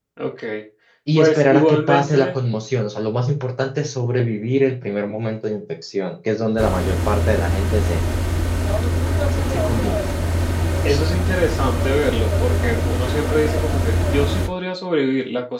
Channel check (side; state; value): both; identical; correlation 1.00